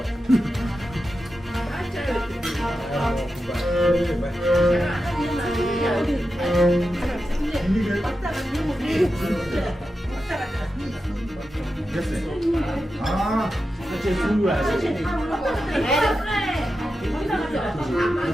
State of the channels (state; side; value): normal; both; correlation 0.90